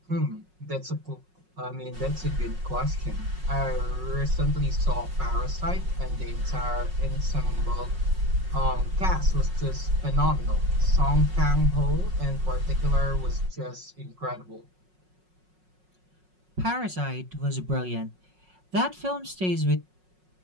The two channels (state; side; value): late; left; 5.5 ms